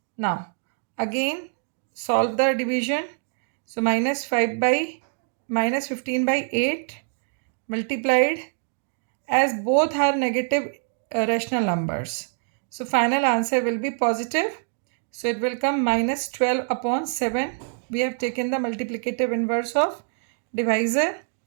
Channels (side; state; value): left; silent; digital silence